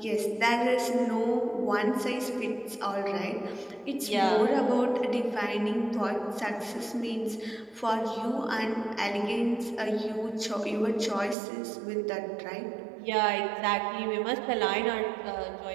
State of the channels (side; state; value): left; drops out; at 11.4 s